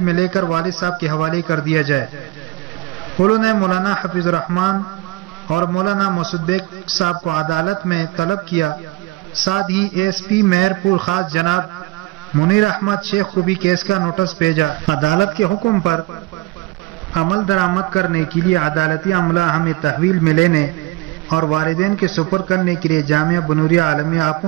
لے کر والد صاحب کے حوالے کر دیا جائے۔ انہوں نے مولانا حفیظ الرحمان اور مولانا مسعود بیگ صاحب کو عدالت میں طلب کیا، ساتھ ہی ASP مہر پور خاص جناب منیر احمد شیخ کو بھی کیس کا نوٹس بھیجا۔ عدالت کے حکم پر عمل درآمد کرنے کے لیے عدالتی عملہ ہمیں تحویل میں لینے اور والدین کے سپرد کرنے کے لیے جامعہ بنوریہ عالمیہ آ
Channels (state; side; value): quieter; left; 20.0 dB